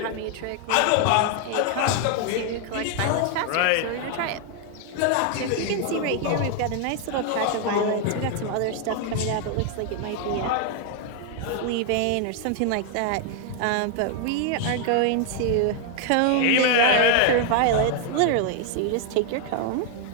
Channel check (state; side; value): different; both; correlation 0.00